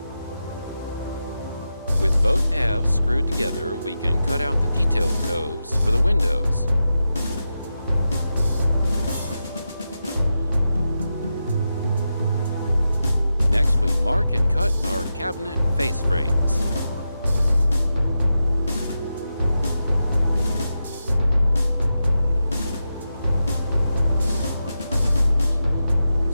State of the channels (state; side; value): inverted; both; correlation -0.89